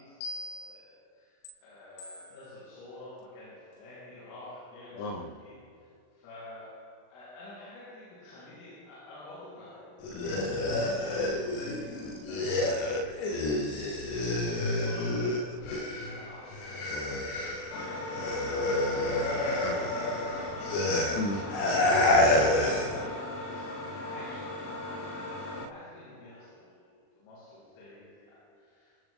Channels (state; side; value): late; right; 40 ms